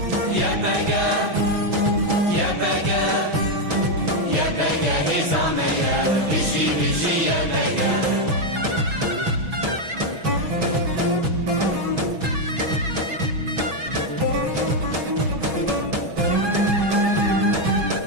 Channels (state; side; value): late; left; 6.1 ms